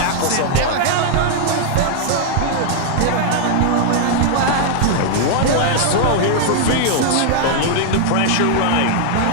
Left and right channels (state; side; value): different; both; correlation -0.01